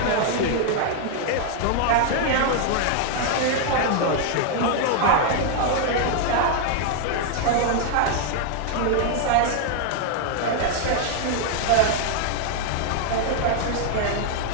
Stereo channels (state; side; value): different; both; correlation 0.00